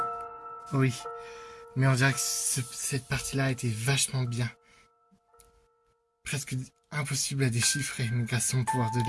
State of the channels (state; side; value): identical; both; correlation 1.00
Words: Oui. Mais on dirait que cette partie-là était vachement bien. Presque impossible à déchiffrer, mais grâce au pouvoir de